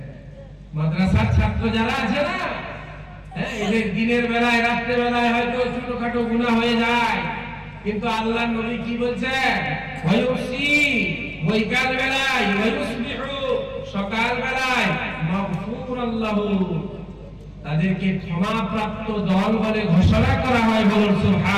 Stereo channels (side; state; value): both; identical; correlation 1.00